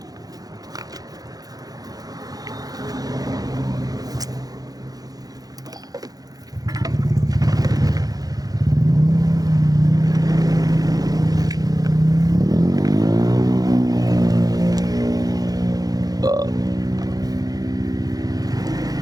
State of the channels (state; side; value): late; left; 0.18 ms